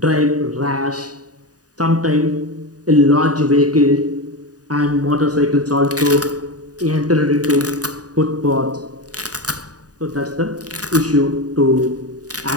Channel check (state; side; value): late; left; 0.68 ms